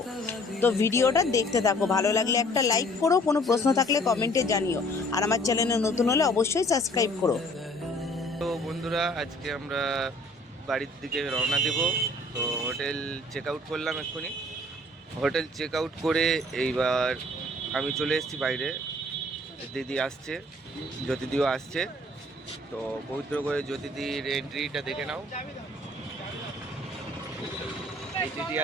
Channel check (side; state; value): both; normal; correlation 0.55